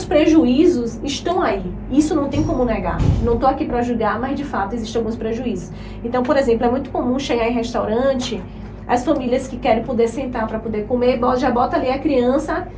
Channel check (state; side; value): identical; both; correlation 1.00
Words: prejuízos estão aí. Isso não tem como negar. Não estou aqui para julgar, mas de fato existem alguns prejuízos. Então, por exemplo, é muito comum chegar em restaurante, as famílias que querem poder sentar para poder comer, já bota ali a criança